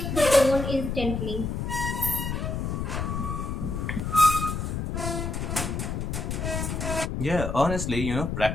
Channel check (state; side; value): noise; left; rumble, 2 dB below the sound